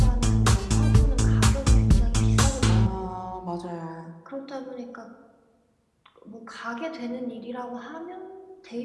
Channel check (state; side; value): identical; both; correlation 1.00